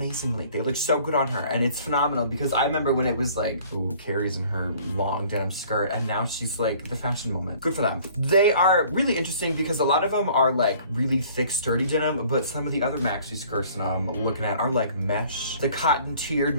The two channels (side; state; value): both; inverted; correlation -0.53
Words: They look so good on her, and it's phenomenal because I remember when it was like, ooh, Carrie's in her long denim skirt, and now she's like the fashion moment. Good for them. They are really interesting because a lot of them are like really thick, sturdy denim, but some of the other maxi skirts that I'm looking at are like mesh. The cotton tiered